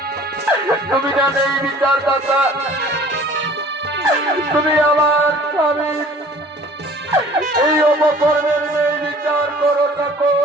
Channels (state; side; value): normal; both; correlation 0.49